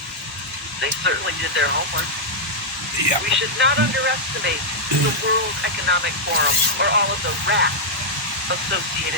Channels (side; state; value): both; normal; correlation -0.06